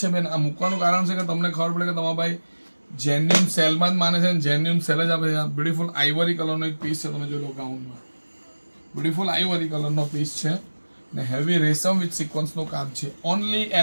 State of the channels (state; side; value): inverted; both; correlation -1.00